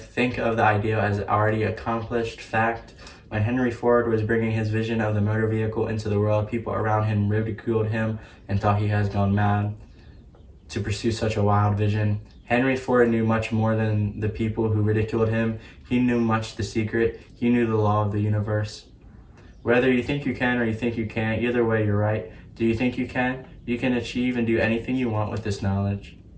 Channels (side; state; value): both; identical; correlation 1.00